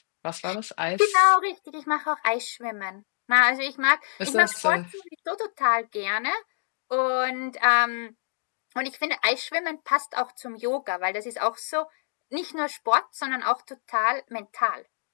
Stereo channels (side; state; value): right; silent; digital silence